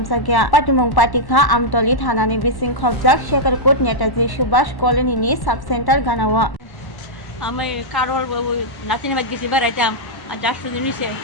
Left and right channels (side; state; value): right; late; 1.1 ms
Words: Patimung Patikha Amtali Thana ni Bising Khobjak Chakrajwk Netaji Subhash Colony ni Subcenter Ganawa আমি কারোর নাতিনি বাদ গেছি বেড়াইতাম আর যার শুধু নিছে